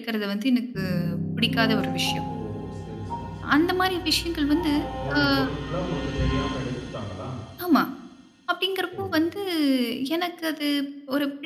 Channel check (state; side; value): identical; both; correlation 1.00